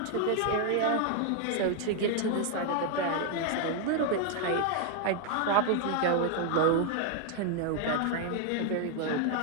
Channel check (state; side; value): different; both; correlation 0.00